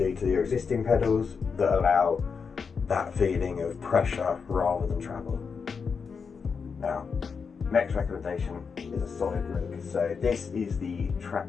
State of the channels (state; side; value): quieter; right; 5.7 dB